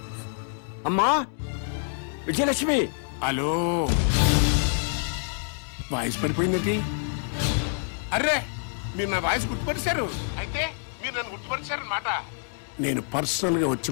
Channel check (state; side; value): silent; right; 60 dB below the other